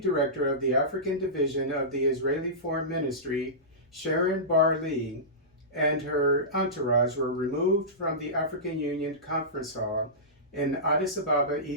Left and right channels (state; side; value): normal; both; correlation -0.19